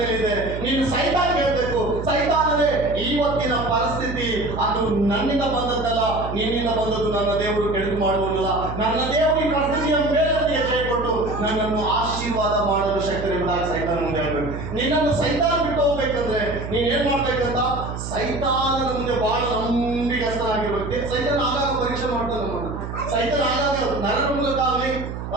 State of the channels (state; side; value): noise; right; hum, 7 dB below the sound